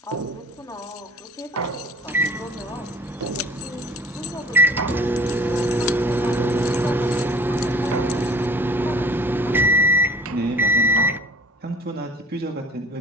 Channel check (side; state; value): both; normal; correlation 0.49